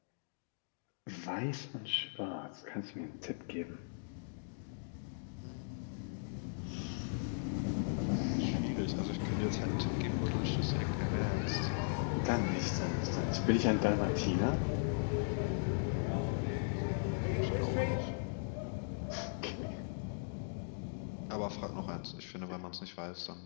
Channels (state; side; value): silent; right; digital silence